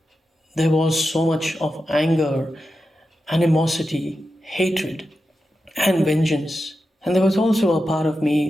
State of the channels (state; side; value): normal; both; correlation 0.90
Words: there was so much of anger, animosity, hatred, and vengeance. And there was also a part of me